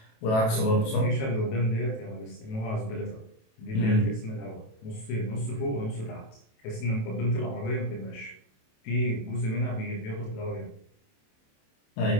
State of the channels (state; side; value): late; right; 27 ms